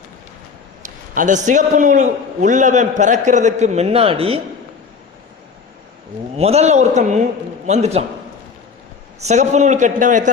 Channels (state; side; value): quieter; right; 5.5 dB